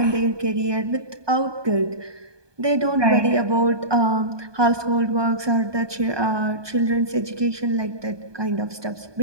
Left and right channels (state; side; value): late; left; 1.2 ms